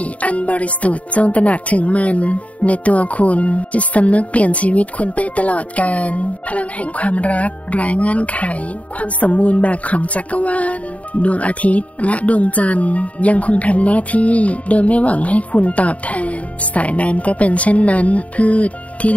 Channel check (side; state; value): right; late; 0.067 ms